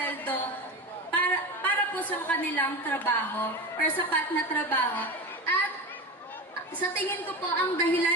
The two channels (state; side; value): normal; both; correlation 0.24